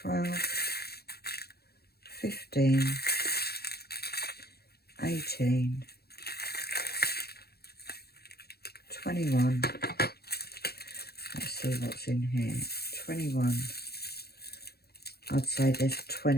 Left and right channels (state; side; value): late; right; 0.46 ms